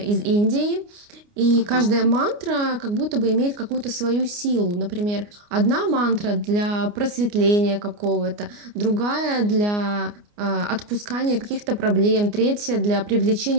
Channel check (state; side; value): late; left; 29 ms